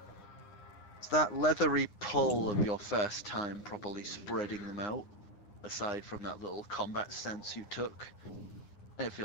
It's that leathery pull of your first time properly spreading them out, aside from that little combat stance you took. And it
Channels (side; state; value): right; late; 9.8 ms